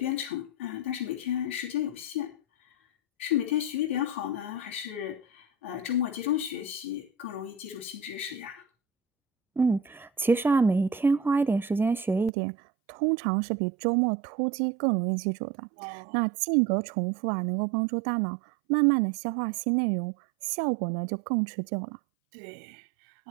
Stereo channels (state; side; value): drops out; left; at 12.3 s